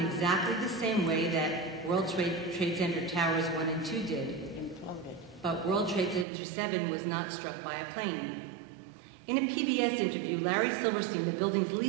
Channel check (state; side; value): drops out; left; at 6.2 s